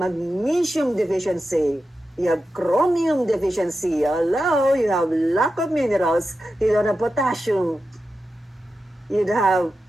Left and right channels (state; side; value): normal; both; correlation 0.91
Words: deficiency. You have chromium deficiency. Hello, you have lack of minerals. You don't have potassium. You have